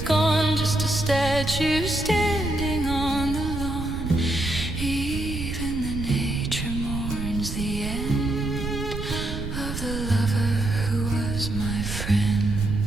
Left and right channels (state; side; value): noise; right; rumble, 6 dB below the sound